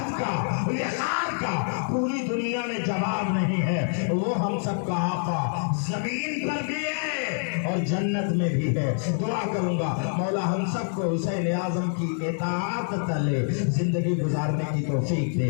کا، وقار کا پوری دنیا میں جواب نہیں ہے۔ وہ ہم سب کا آقا زمین پر بھی ہے اور جنت میں بھی ہے۔ دعا کروں گا مولا ہم سب کو حسین اعظم کی اطاعت تلے زندگی گزارنے کی توفیق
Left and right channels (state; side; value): silent; right; 61 dB below the other